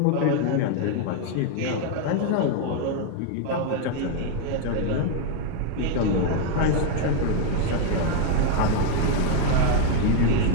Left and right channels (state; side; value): different; both; correlation 0.01